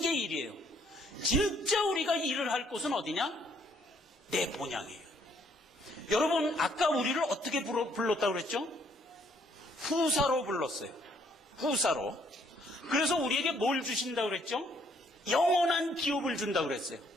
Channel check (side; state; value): both; normal; correlation 0.67